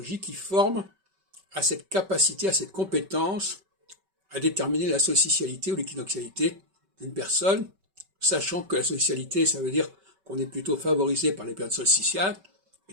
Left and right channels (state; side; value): late; left; 5.2 ms